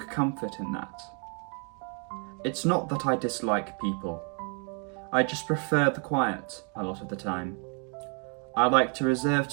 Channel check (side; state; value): left; quieter; 39.1 dB